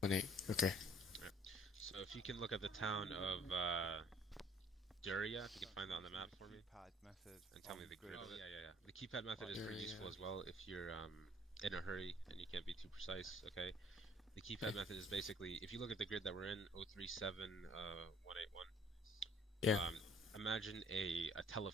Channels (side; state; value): both; normal; correlation 0.57